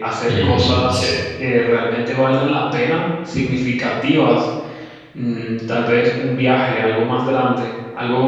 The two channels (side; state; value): both; identical; correlation 1.00